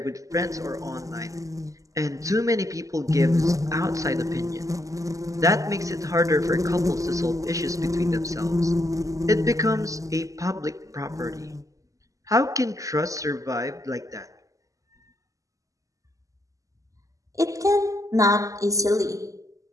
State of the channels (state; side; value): late; left; 0.16 ms